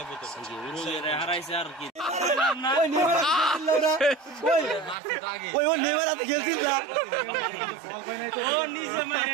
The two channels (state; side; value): drops out; left; at 5.0 s